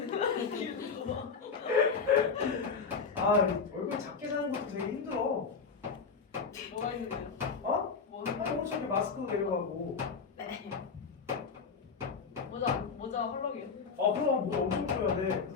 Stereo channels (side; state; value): right; quieter; 5.3 dB